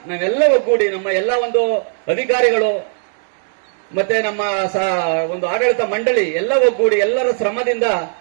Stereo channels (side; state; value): left; silent; digital silence